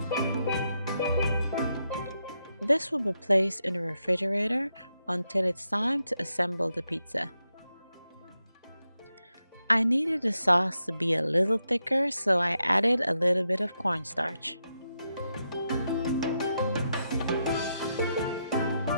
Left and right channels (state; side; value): inverted; both; correlation -0.84